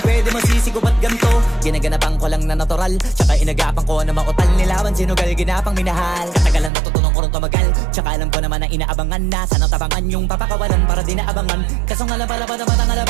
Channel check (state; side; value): drops out; left; at 6.7 s